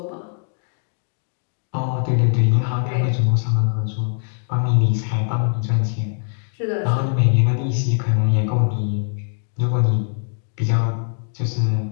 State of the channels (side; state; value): right; silent; digital silence